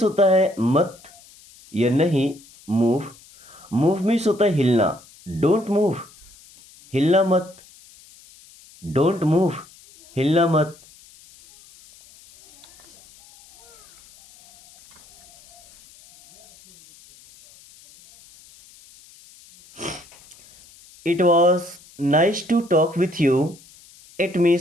होता है मत या नहीं, मूव, मूव मीन्स होता है हिलना। डोंट मूव, हिलना मत, डोंट मूव, हिलना मत। It was nice to talk with you, it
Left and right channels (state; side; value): noise; left; hiss, 25 dB below the sound